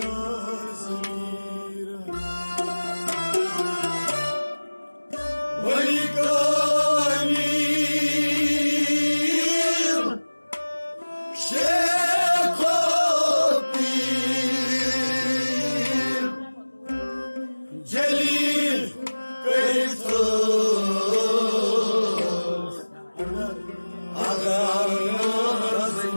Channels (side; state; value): both; inverted; correlation -1.00